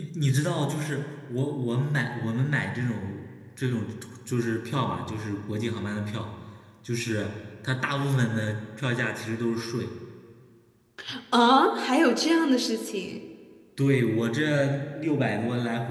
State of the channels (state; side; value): identical; both; correlation 1.00